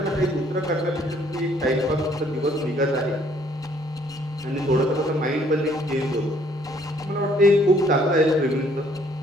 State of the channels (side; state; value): both; normal; correlation 0.63